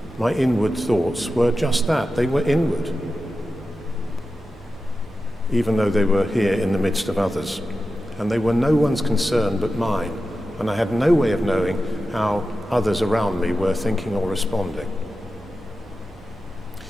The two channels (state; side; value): normal; both; correlation 0.92